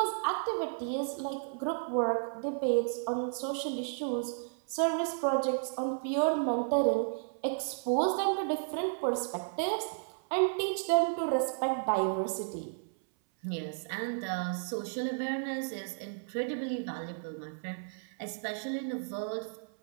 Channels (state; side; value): silent; left; 56 dB below the other